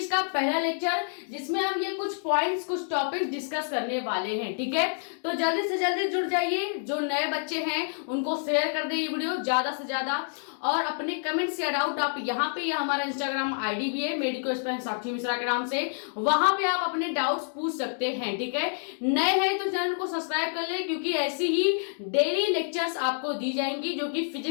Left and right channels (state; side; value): silent; right; digital silence